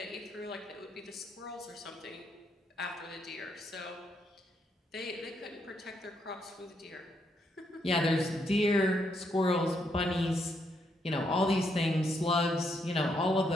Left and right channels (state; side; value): normal; both; correlation 0.77